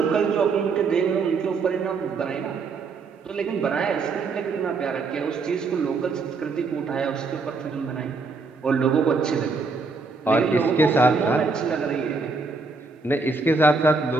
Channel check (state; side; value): quieter; left; 4.2 dB